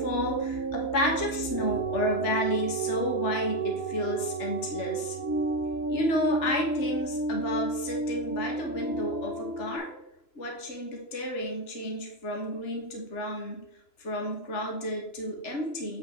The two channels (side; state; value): right; late; 3.0 ms